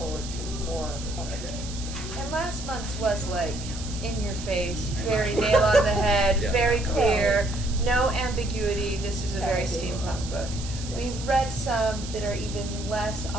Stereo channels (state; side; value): noise; right; hiss, 12 dB below the sound